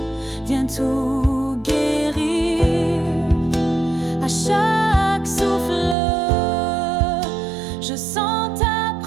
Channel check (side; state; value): left; drops out; at 6.0 s